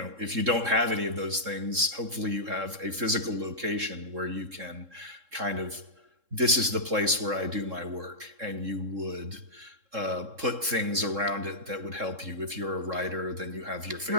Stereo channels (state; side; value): late; left; 3.7 ms